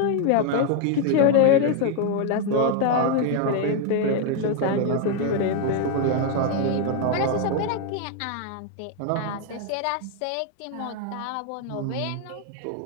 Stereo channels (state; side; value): different; both; correlation 0.01